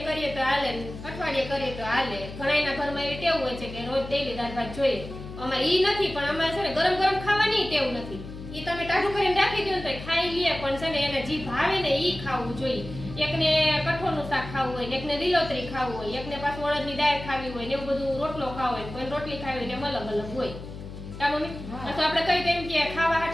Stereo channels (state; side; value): noise; left; hum, 11 dB below the sound